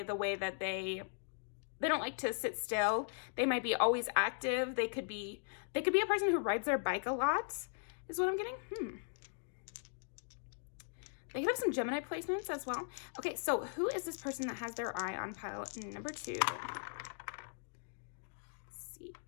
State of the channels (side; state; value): right; silent; digital silence